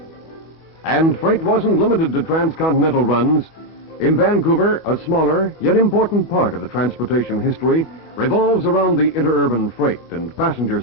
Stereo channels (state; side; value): late; right; 25 ms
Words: And freight wasn't limited to transcontinental runs. In Vancouver, a smaller yet important part of the transportation history revolves around the interurban freight and passenger